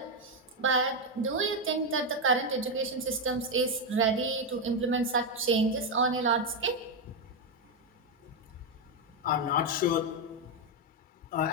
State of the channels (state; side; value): normal; both; correlation 0.04